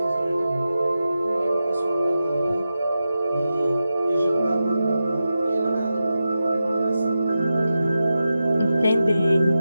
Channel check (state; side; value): inverted; both; correlation -0.91